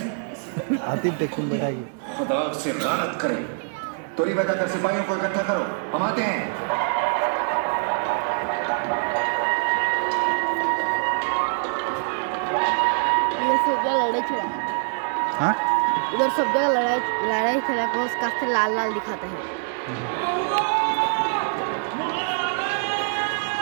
आतिफ टेक्शन बैठाएगी। खुदा से लानत करे। तोरी बताकर सिपाहियों को इकट्ठा करो, हम आते हैं। ये सब जगह लड़ाई चला। हाँ? उधर सब जगह लड़ाई चला को उसका से लाल लाल दिखाते हैं।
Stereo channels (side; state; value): left; silent; digital silence